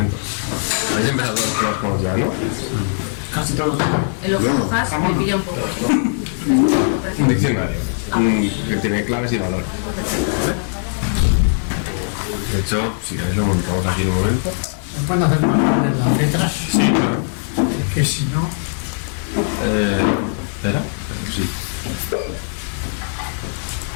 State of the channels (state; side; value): silent; right; 66 dB below the other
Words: Habéis empezado todos con las coans ya, ¿no? Casi todos. En los hash me pilla un poco. Un diccionario que tiene claves y valores, ¿vale? De hecho, si queréis lo montamos aquí en un momento. ¿Me pueden hacer más grandes las letras? Sí, claro. Es que si no... ¿Espera? Sí.